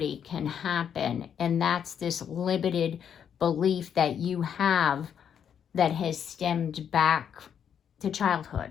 can happen. And that's this limited belief that you have that has stemmed back to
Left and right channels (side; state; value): right; quieter; 8.3 dB